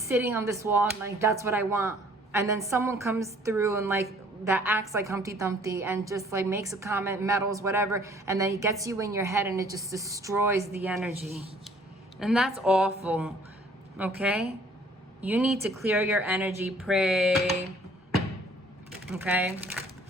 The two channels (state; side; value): normal; both; correlation 0.57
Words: on this wall and like, that's what I want. And then someone comes through and like, that acts like Humpty Dumpty and just like makes a comment, meddles, whatever, and then it gets you in your head and it just destroys the energy. And that's awful, okay? You need to clear your energy, pray, okay?